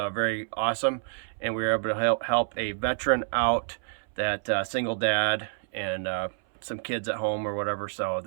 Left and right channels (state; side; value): silent; left; 59 dB below the other